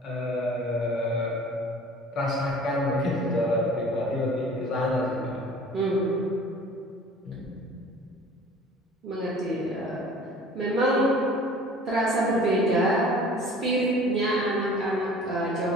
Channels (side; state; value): both; normal; correlation 0.47